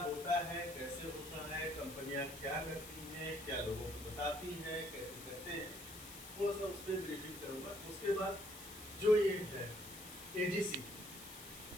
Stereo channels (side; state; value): left; noise; hiss, 13 dB below the sound